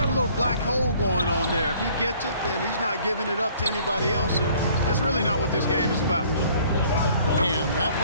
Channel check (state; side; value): inverted; both; correlation -0.57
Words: a little black hole going on there. If he gets it, then he's not giving it up to anybody else, and that's really not what this game is about. And that